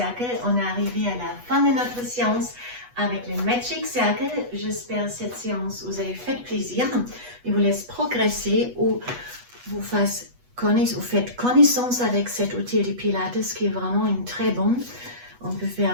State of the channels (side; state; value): left; late; 8.2 ms